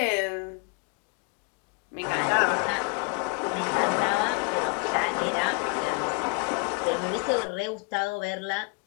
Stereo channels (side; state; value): right; quieter; 33.7 dB